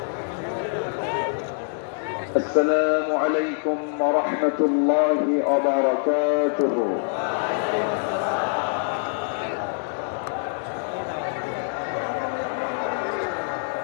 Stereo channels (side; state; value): right; silent; digital silence